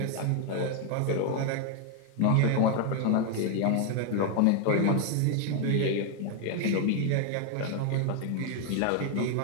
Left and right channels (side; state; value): both; different; correlation 0.00